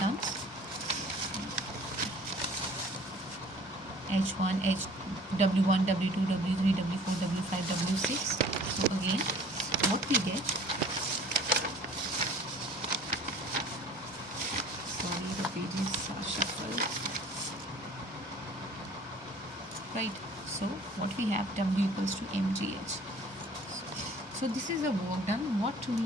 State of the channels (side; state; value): both; normal; correlation 0.49